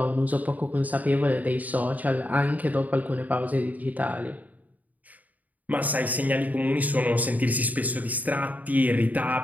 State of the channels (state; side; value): late; left; 0.076 ms